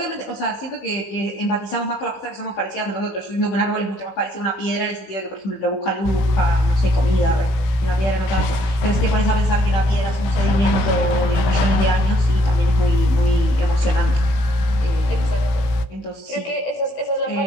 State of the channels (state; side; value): late; right; 16 ms